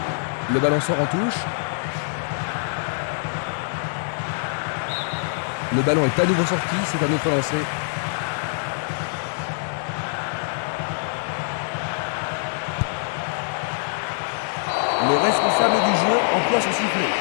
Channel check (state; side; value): silent; right; digital silence